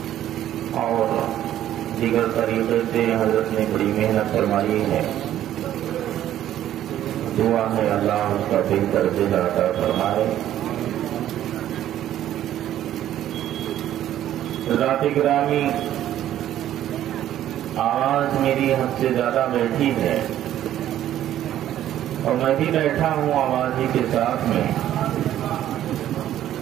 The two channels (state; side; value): quieter; left; 12.1 dB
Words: اور دیگر طریقے سے حضرت نے بڑی محنت فرمائی ہے. دعا ہے اللہ اس کا بہتر جزا عطا فرمائے. حضرات گرامی، آواز میری حد سے زیادہ بیٹھی ہے اور میں بھی بیٹھا ہوں آواز ہی کے ساتھ میں.